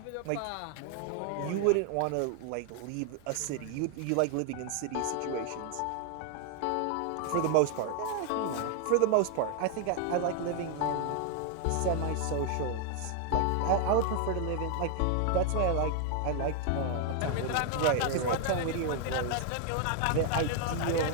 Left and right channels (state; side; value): different; both; correlation 0.00